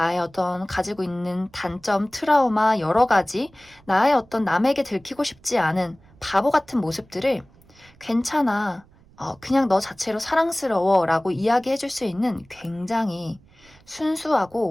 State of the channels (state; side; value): noise; right; rumble, 28 dB below the sound